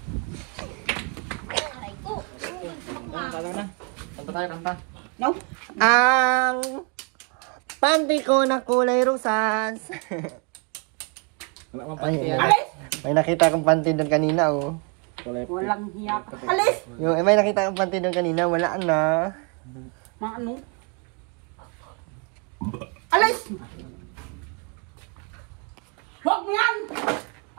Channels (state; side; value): quieter; left; 34.9 dB